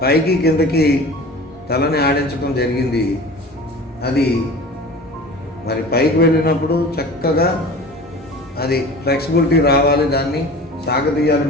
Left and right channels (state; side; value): normal; both; correlation 0.39